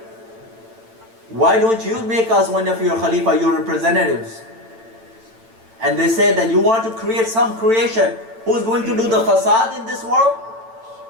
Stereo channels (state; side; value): late; left; 8.9 ms